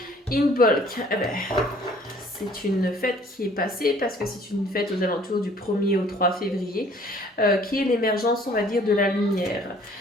In bulk, c'est une fête qui est passée parce que c'est une fête aux alentours du 1er au 3 février, qui est l'émergence, on va dire, de la lumière.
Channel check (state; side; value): normal; both; correlation 0.56